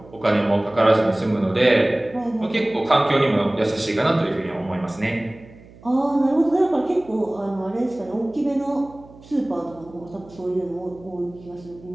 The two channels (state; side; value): noise; right; hum, 22 dB below the sound